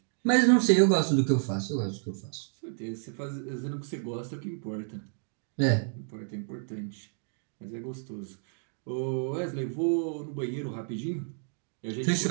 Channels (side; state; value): left; silent; digital silence